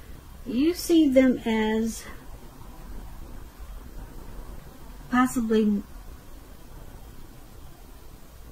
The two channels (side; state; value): both; identical; correlation 1.00